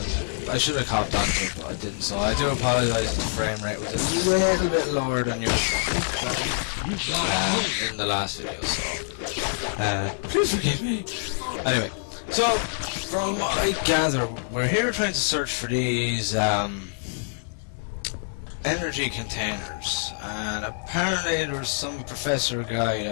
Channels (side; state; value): right; silent; digital silence